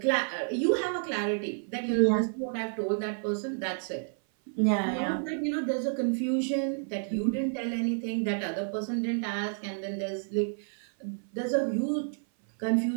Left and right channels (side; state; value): left; silent; 56 dB below the other